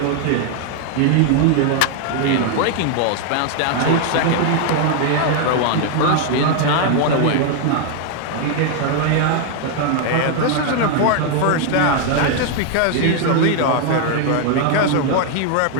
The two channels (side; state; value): both; different; correlation 0.00